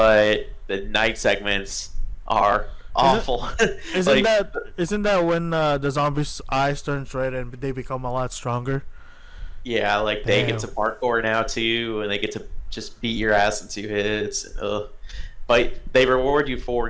the night segments are awful. Isn't that when the zombies' eyes turn red and they become a lot stronger? Yeah, like they Damn. get to parkour now too, and they get to just beat your ass in 2 hits. Ugh. But they reward you for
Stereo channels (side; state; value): both; identical; correlation 1.00